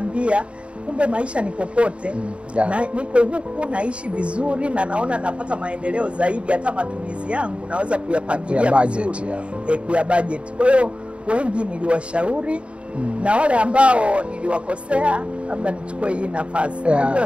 kumbe maisha ni popote. Na niko huku naishi vizuri na naona napata maendeleo zaidi, hata matumizi yangu naweza kuyapangilia vizuri, kuya budget. Kwa hiyo wengi niliwashauri na wale ambao niliwakosea labda nichukue hii nafasi.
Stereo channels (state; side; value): late; left; 0.059 ms